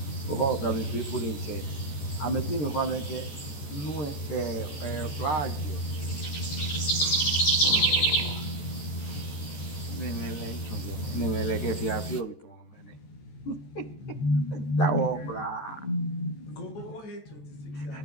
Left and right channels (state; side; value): late; right; 14 ms